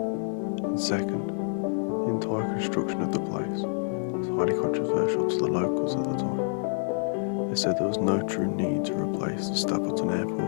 And second, the entire construction of the place was highly controversial to the locals at the time. They said there was no true need to replace the Stapleton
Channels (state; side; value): silent; right; 60 dB below the other